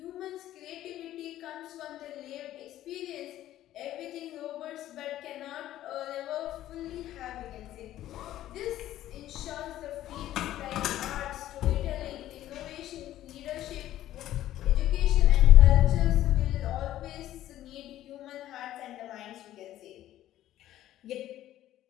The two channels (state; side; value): quieter; right; 13.4 dB